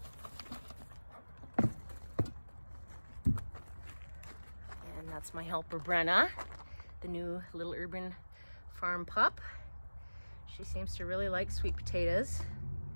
And that's my helper Brenna, the new little urban farm pup. She seems to really like sweet potatoes.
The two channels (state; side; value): inverted; both; correlation -1.00